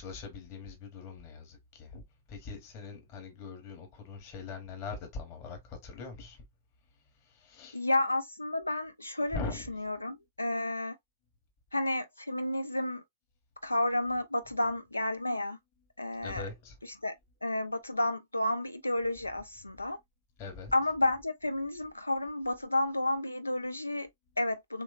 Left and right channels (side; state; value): both; inverted; correlation -0.88